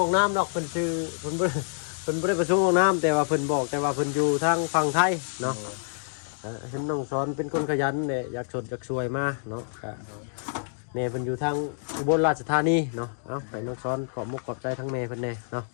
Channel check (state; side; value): silent; right; digital silence